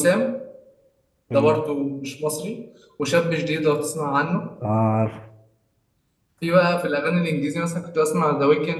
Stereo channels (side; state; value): both; identical; correlation 1.00